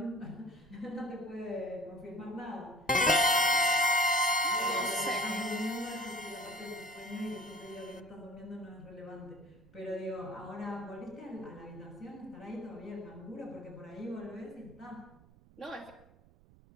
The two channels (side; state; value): right; noise; rumble, 25 dB below the sound